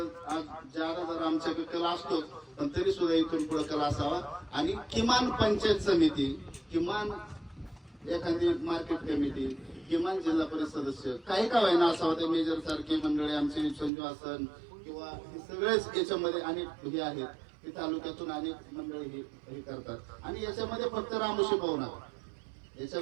आज ज्यादा जर आमच्याकडे कला असतोच पण तरी सुद्धा इथून पुढे कला असावा. आणि किमान पंचायत समिती किमान एखादी मार्केट कमिटी किमान जिल्हा परिषद सदस्य काही का व्हायना असावं. ते मेजर सारखे मंडळी आमचे संजू आसन किंवा हे सगळेच याच्यामध्ये अनेक हे आहेत की तालुक्यातून अनेक मंडळी हे करतात. आणि याच्यामध्ये फक्त रामोशी पाहू नका.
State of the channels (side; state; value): left; drops out; at 13.9 s